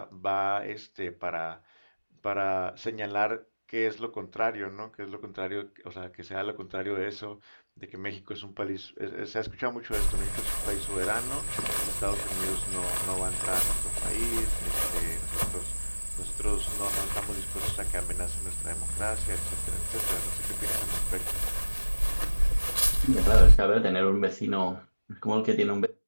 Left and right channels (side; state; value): both; inverted; correlation -1.00